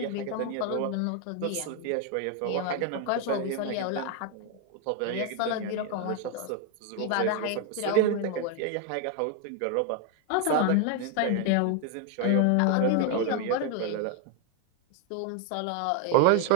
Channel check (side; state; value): both; different; correlation 0.00